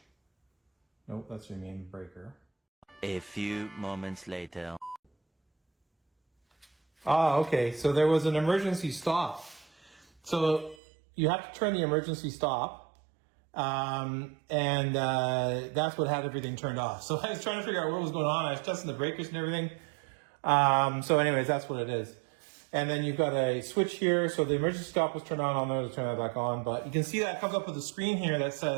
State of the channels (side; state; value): left; drops out; at 10.8 s